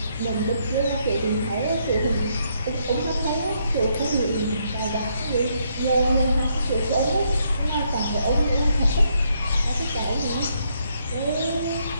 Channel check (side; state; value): both; inverted; correlation -0.74